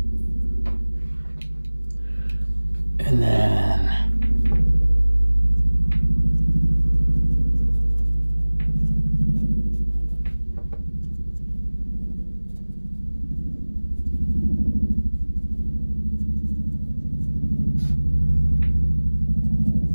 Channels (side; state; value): both; inverted; correlation -1.00